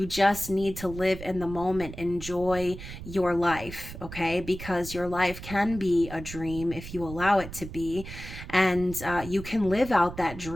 just need to live in the moment, enjoy your life, okay? Because your life can be a dream if you allow it to be. And you can live out that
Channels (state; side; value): noise; right; rumble, 12 dB below the sound